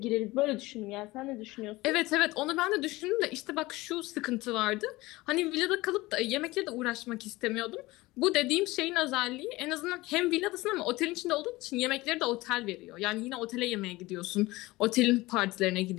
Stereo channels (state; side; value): quieter; right; 20.1 dB